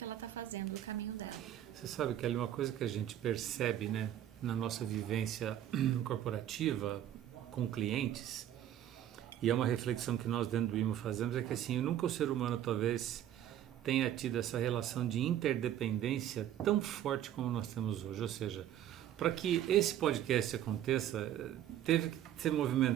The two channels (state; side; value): quieter; left; 11.4 dB